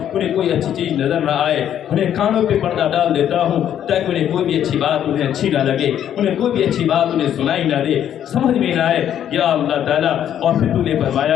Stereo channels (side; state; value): right; quieter; 10.2 dB